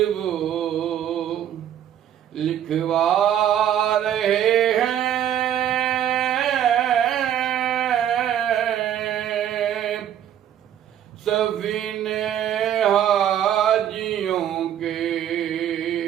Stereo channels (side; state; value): left; quieter; 10.3 dB